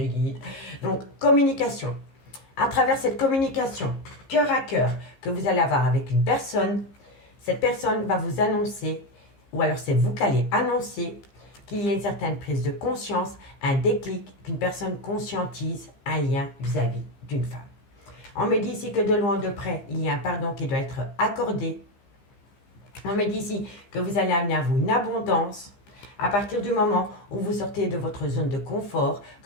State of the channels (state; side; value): late; right; 15 ms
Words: guides. Donc, communication. À travers cette communication, cœur à cœur, que vous allez avoir avec une personne, cette personne va vous annoncer, ou alors c'est vous qui allez annoncer qu'il y a une certaine prise de conscience, un déclic, qu'une personne conscientise un lien vis-à-vis d'une femme. On me dit ici que de loin ou de près, il y a un pardon qui doit être accordé. On me dit ici que vous allez amener à vous une abondance à partir du moment où vous sortez de votre zone de confort,